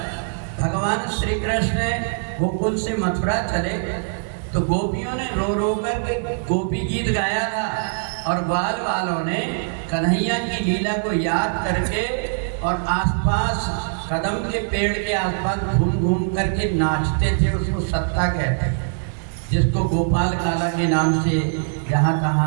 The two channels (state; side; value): silent; left; digital silence